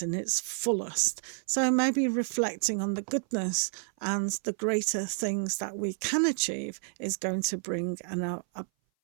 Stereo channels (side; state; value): left; silent; 57 dB below the other